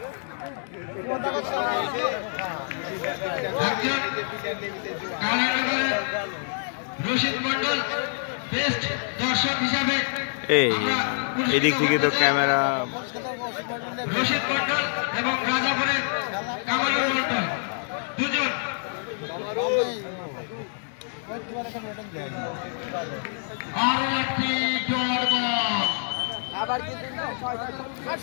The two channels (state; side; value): silent; right; 61 dB below the other